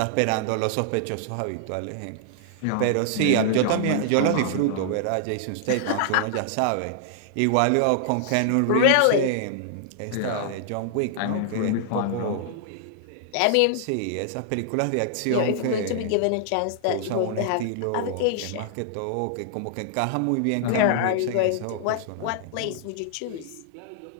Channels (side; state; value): both; different; correlation -0.01